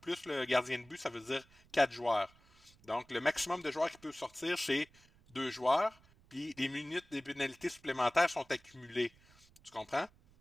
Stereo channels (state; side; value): noise; right; rumble, 28 dB below the sound